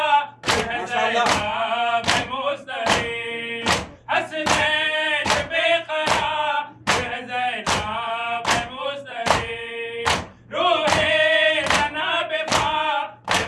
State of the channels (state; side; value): identical; both; correlation 1.00